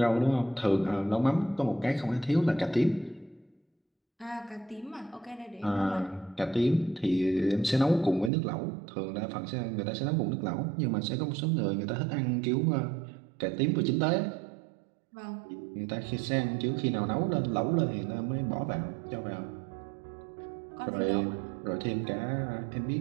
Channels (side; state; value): left; drops out; at 8.3 s